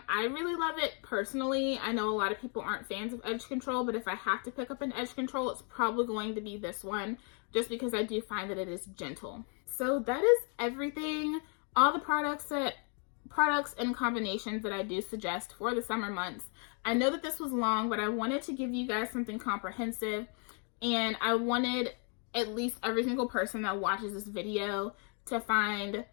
really love it personally. I know a lot of people aren't fans of edge control, but if I have to pick up an edge control, it's probably going to be this one, just because I do find that it is gentle. So that is everything. All the products and combinations that I do suggest for the summer months. I know that this was long, but I wanted to give you guys something comprehensive, and I wanted at least every single person that watches this video to find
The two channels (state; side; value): quieter; right; 39.5 dB